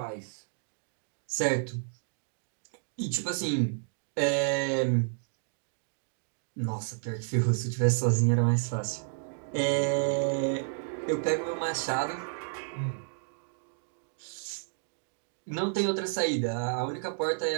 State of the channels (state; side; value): silent; left; digital silence